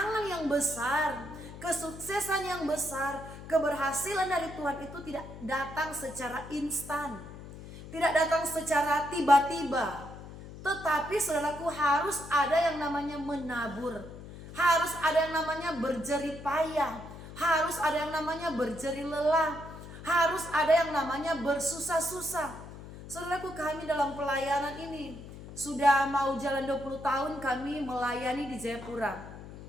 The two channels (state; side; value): noise; left; hum, 14 dB below the sound